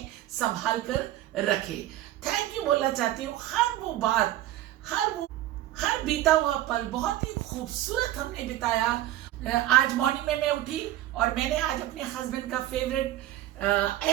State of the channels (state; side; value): quieter; left; 14.1 dB